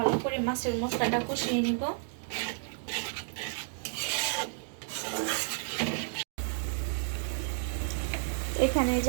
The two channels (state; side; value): silent; left; digital silence